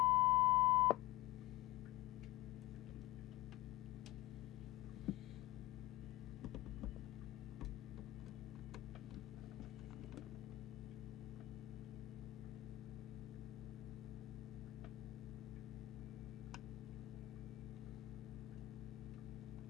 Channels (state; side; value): quieter; right; 16.3 dB